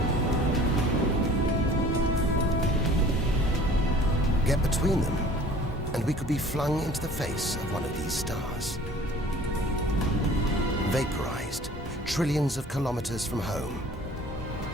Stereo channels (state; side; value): normal; both; correlation 0.48